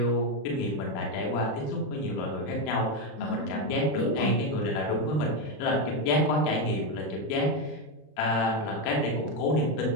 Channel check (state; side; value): late; right; 27 ms